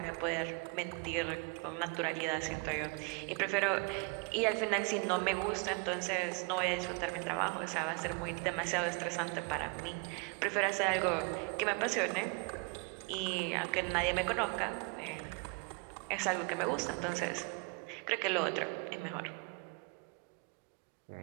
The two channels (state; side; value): quieter; left; 28.4 dB